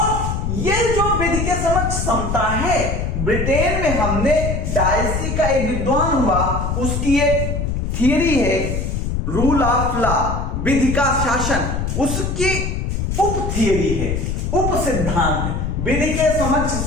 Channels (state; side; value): noise; left; rumble, 1 dB below the sound